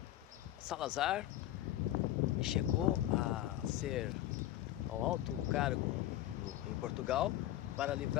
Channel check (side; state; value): right; quieter; 13.7 dB